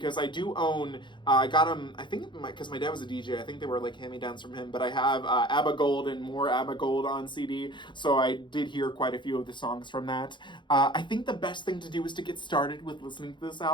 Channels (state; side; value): late; right; 0.23 ms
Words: I do own. I got them. I think because my dad was a DJ. I think they were like hand-me-downs from him. But I have ABBA Gold and more ABBA Gold on CD, so I did hear quite a few of the songs from that. I think the best thing to do is to get started with listening to this